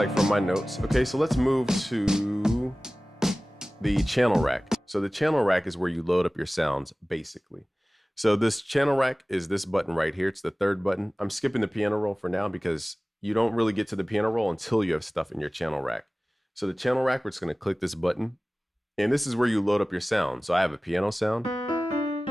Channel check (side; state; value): both; normal; correlation 0.98